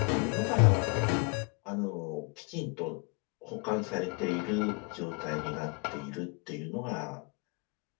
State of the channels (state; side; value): quieter; right; 32.9 dB